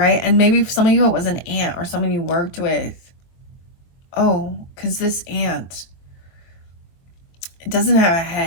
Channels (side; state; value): right; late; 22 ms